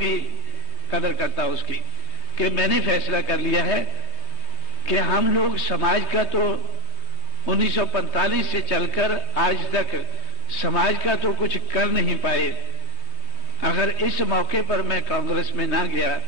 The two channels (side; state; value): right; late; 3.2 ms